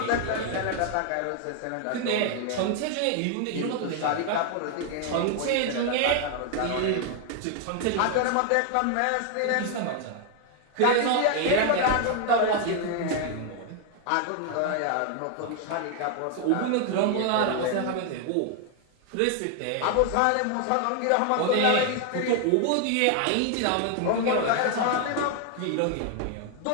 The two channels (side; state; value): both; different; correlation 0.00